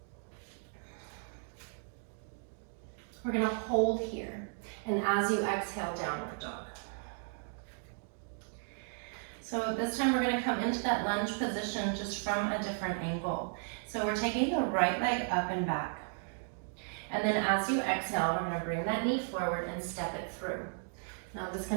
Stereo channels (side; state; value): left; silent; 54 dB below the other